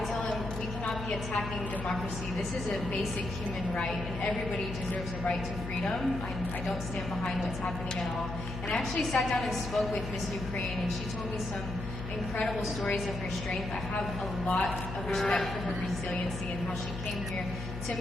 tell him we cannot be attacking democracy. This is a basic human right, and everybody deserves a right to freedom. I don't stand behind what's happening at all. And I actually sat down and spoke with Miss Ukraine, and she told me some incredible stories of her strength. I have a lot of respect for her resiliency and how she came here to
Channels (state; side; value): noise; left; hum, 7 dB below the sound